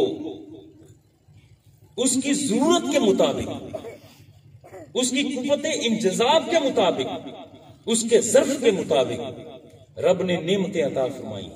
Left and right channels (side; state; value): both; identical; correlation 1.00